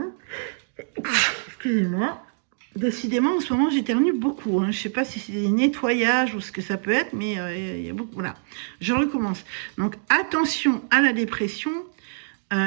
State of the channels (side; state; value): left; silent; digital silence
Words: Excusez-moi. Décidément, en ce moment, j'éternue beaucoup. Hein. Je ne sais pas si c'est des nettoyages ou ce que ça peut être, mais il y a beaucoup. Voilà, je recommence. Donc, attention à la dépression.